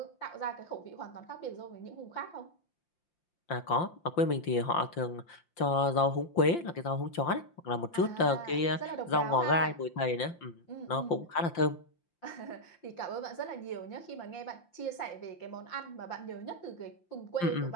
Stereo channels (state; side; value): late; right; 5.8 ms